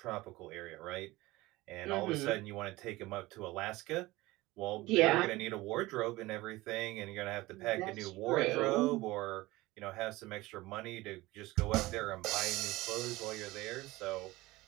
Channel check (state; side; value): quieter; left; 19.7 dB